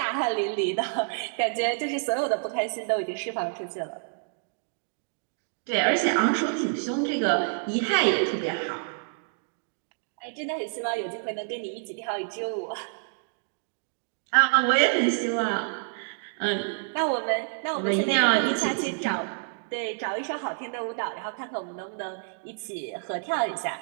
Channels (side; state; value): left; silent; digital silence